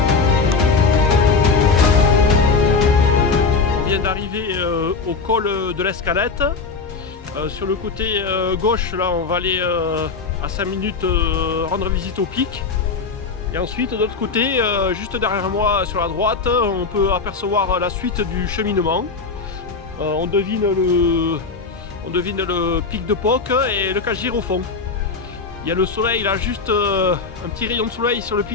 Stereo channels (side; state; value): right; quieter; 4.6 dB